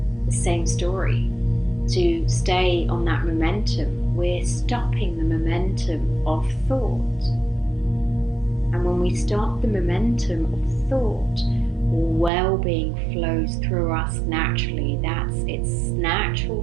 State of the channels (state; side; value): drops out; left; at 12.3 s